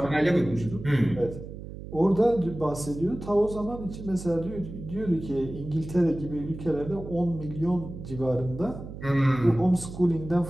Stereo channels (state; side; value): noise; right; hum, 11 dB below the sound